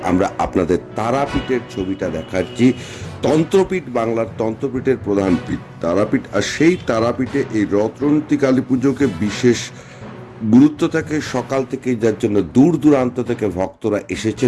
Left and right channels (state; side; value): identical; both; correlation 1.00